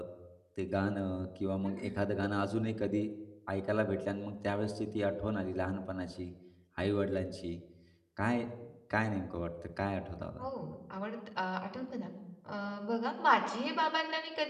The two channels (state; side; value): identical; both; correlation 1.00